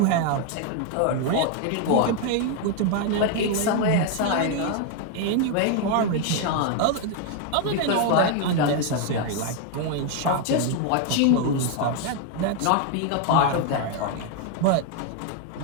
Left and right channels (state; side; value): different; both; correlation 0.01